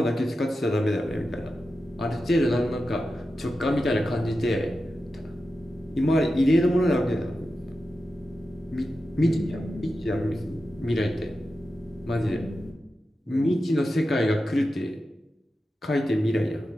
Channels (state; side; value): normal; both; correlation 0.91